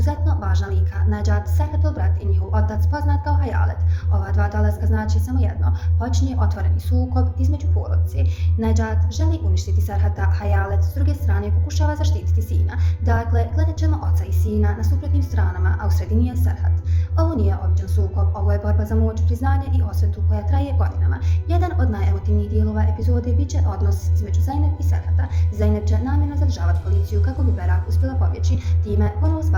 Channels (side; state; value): both; identical; correlation 1.00